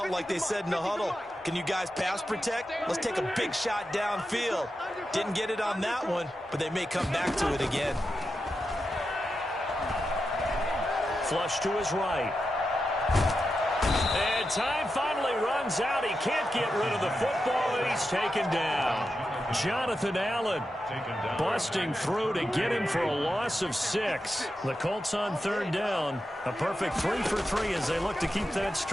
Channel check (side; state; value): both; normal; correlation 0.89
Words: like they said in the huddle, can you guys pass protect? Let's take a big shot downfield. Didn't get it on that one, but they may come back to it again. Flush to his right. And And time finally runs out. He can't get rid of the football, and he's taken down. Jonathan Allen busting through to get him for a loss of 6. The Colts on third down. A perfect 3 for 3 as they look to keep that